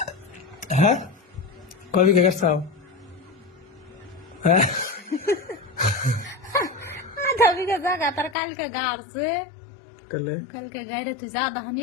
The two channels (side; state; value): right; drops out; at 8.3 s